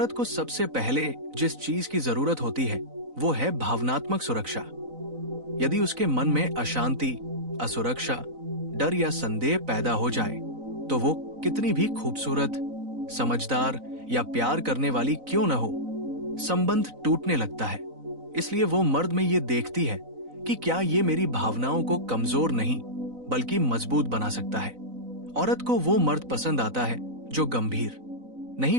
को सबसे पहले जिस चीज की जरूरत होती है वो है भावनात्मक सुरक्षा। यदि उसके मन में अशांति, असुरक्षा, डर या संदेह पैदा हो जाए तो वो कितनी भी खूबसूरत, समझदार या प्यार करने वाली क्यों न हो, संबंध टूटने लगता है। इसलिए वो मर्द में ये देखती है कि क्या ये मेरी भावनाओं को कमजोर नहीं बल्कि मजबूत बना सकता है। औरत को वो मर्द पसंद आता है जो गंभीर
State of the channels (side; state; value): left; late; 4.0 ms